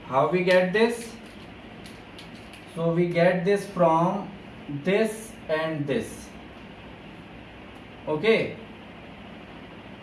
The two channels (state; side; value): identical; both; correlation 1.00